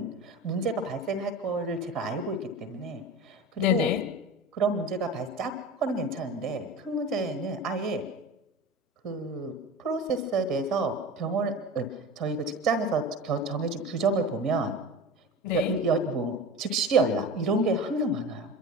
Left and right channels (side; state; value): both; normal; correlation 0.32